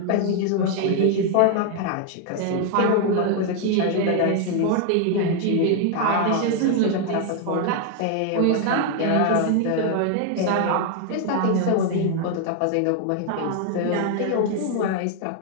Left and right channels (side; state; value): both; different; correlation 0.01